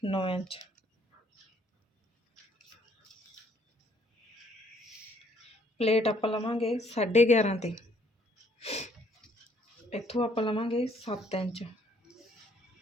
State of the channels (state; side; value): normal; both; correlation 0.65